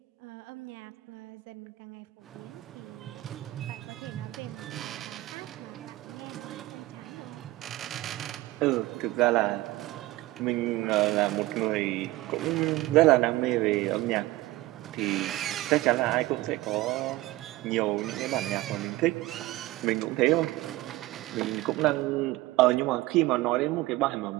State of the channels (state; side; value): quieter; left; 18.4 dB